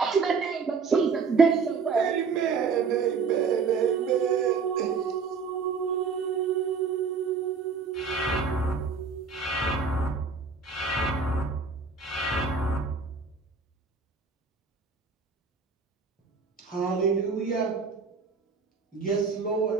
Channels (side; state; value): left; quieter; 5.1 dB